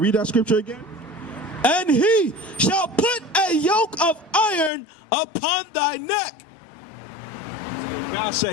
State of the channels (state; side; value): drops out; right; at 4.7 s